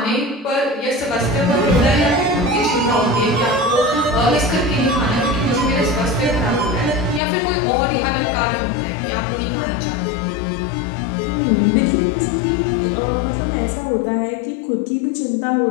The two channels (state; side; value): drops out; right; at 7.2 s